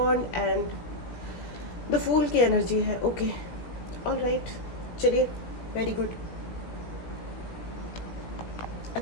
and the fool की एनर्जी है। ओके, ऑल राइट, चलिए, वेरी गुड,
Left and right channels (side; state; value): right; late; 17 ms